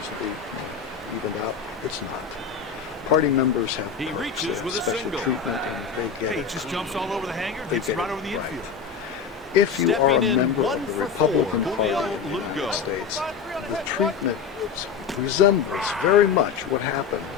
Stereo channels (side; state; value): right; quieter; 6.4 dB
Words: to be evened out. It's not. Party members have He perks, reaches with a special single. treatment, and they get Hey, it. just jumps all over the hanger, They gets get right it over the right. infield. If you are a Stepping in, member 1 of the for Republican 4, Party Julio of the United Lugo. States, the treatment resembles very much what